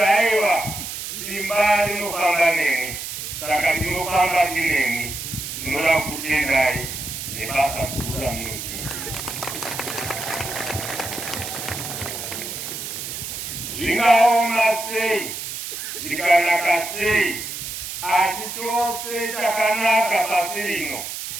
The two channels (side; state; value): right; noise; hiss, 7 dB below the sound